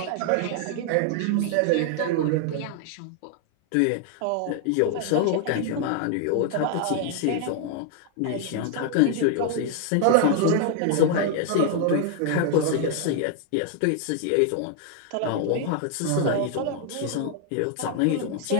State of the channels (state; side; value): different; both; correlation 0.00